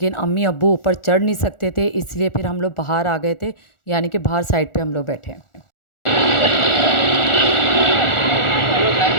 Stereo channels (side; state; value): right; late; 1.4 ms